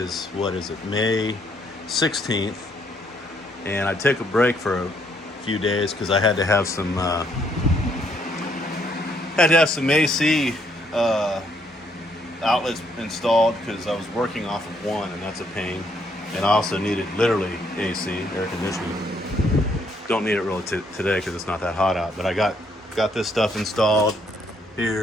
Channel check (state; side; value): normal; both; correlation 0.70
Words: May 16th. And I took a break for a few days because I had to have some AC outlets installed because I was working off of one, and that's a pain. And I also needed literally AC, air conditioning. Don't need it really today because it's not that hot out. But I got this stuff installed